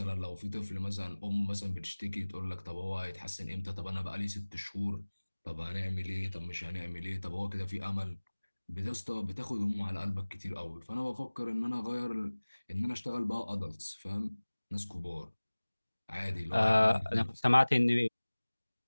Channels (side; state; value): both; inverted; correlation -1.00